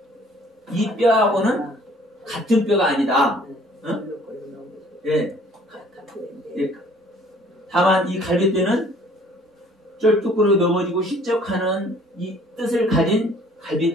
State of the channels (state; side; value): normal; both; correlation 0.55